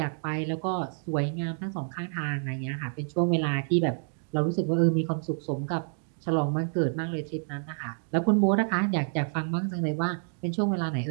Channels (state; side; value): silent; left; 59 dB below the other